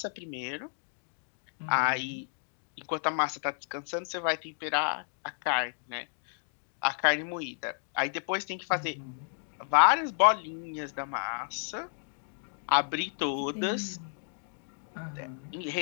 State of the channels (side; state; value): right; silent; 56 dB below the other